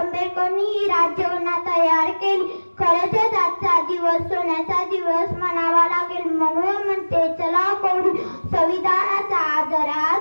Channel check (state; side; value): inverted; both; correlation -1.00